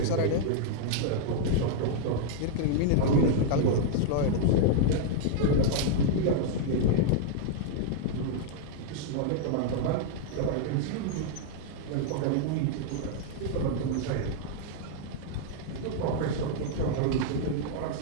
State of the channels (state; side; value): different; both; correlation -0.01